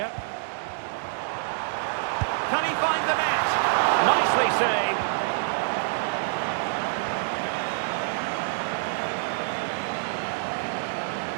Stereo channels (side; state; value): left; silent; 60 dB below the other